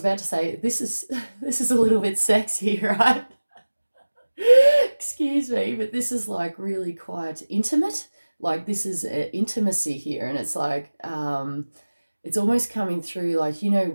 about to say, this is a little bit sexy, right? Excuse me, but this is like really quite intimate. Like this is intimacy here, and it's like it's almost coming through like,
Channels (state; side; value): inverted; both; correlation -1.00